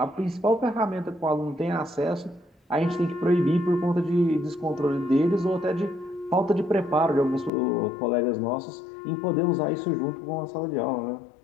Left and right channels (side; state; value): right; drops out; at 7.5 s